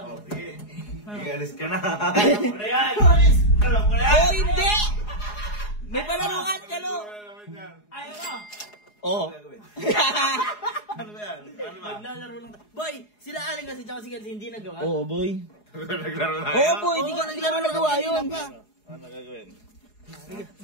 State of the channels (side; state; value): right; late; 4.8 ms